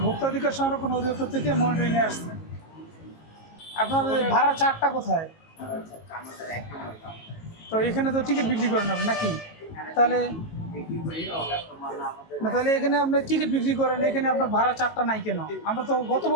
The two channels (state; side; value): late; right; 19 ms